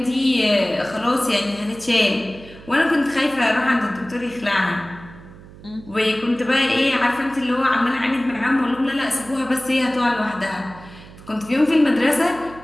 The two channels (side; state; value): right; noise; hum, 19 dB below the sound